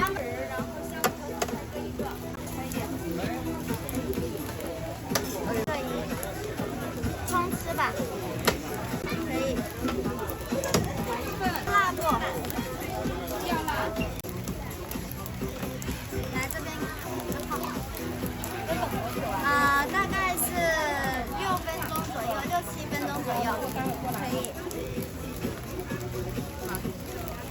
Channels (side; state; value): both; identical; correlation 1.00